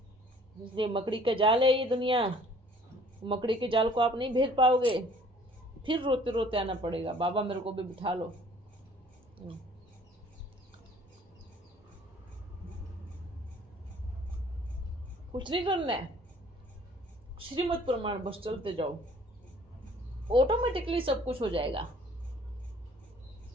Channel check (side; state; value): both; normal; correlation 0.55